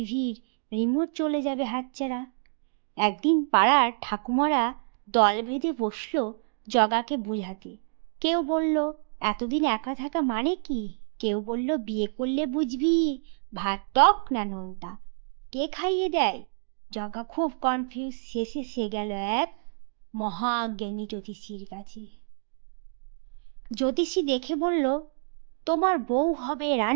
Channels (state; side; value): silent; left; digital silence